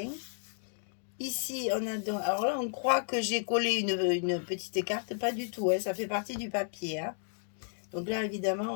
Ici, on a donc... Alors là, on croit que j'ai collé une petite carte. Pas du tout, hein, ça fait partie du papier. Hein. Donc là, évidemment,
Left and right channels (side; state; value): right; silent; 56 dB below the other